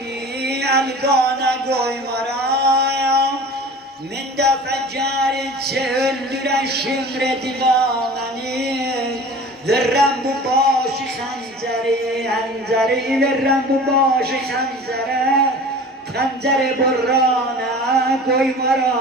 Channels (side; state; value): both; normal; correlation 0.40